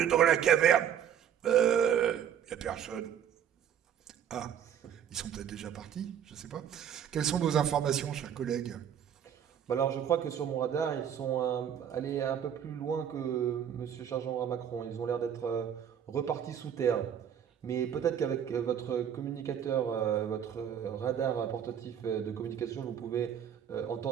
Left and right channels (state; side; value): quieter; left; 9.0 dB